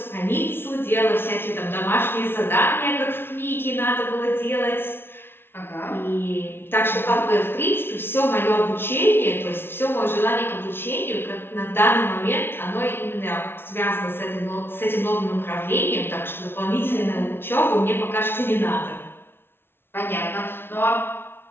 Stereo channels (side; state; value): right; late; 0.11 ms